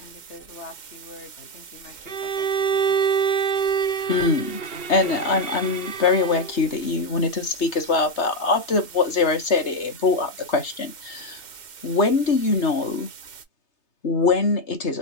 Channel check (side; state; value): right; late; 2.7 ms